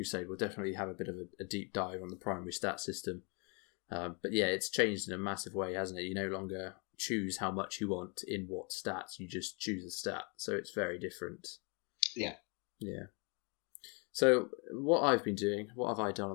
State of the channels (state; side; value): quieter; right; 33.6 dB